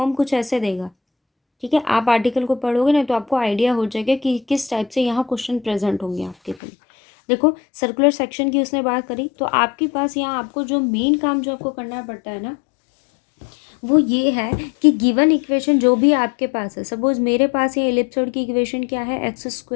कुछ ऐसे देगा। ठीक है, आप आर्टिकल को पढ़ोगे ना तो आपको आइडिया हो जाएगा कि किस टाइप से यहाँ क्वेश्चन प्रेजेंट होंगे आपके लिए। देखो, सर्कुलर सेक्शन की उसने बात करी, तो आपके पास यहाँ आपको जो मेन काम जो आपको करना पड़ता है ना, वो ये है कि गिवन इक्वेशन जो भी आपके पास है, सपोज मेरे पास ये इलिप्सॉइड की इक्वेशन क्या है, x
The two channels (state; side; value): drops out; right; at 6.6 s